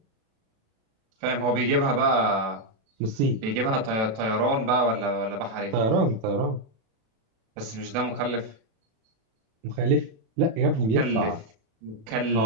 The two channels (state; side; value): late; left; 36 ms